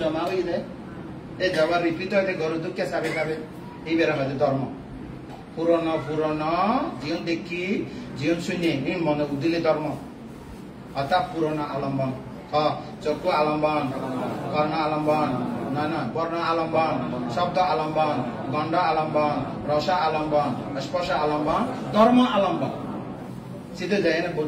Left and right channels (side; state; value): both; identical; correlation 1.00